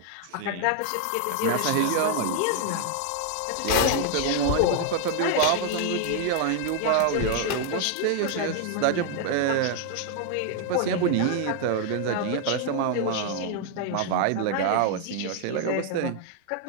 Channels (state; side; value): different; both; correlation 0.00